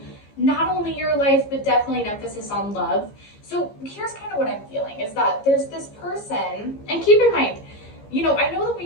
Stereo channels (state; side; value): late; right; 15 ms